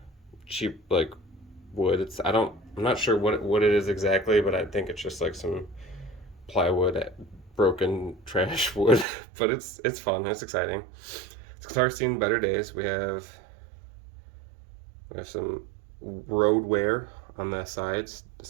like wood. I'm not sure what it is exactly, but I think it's just like some plywood, broken trash wood. But it's fun. It's exciting. This guitar's seen better days. We have some road wear on the sides,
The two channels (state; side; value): drops out; left; at 9.1 s